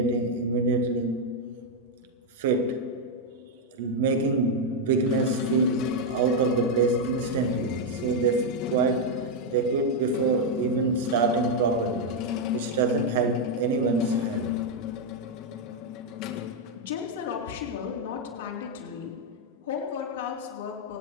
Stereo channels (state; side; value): normal; both; correlation 0.01